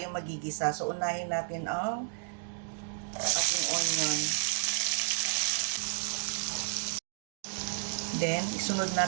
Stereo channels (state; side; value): silent; left; digital silence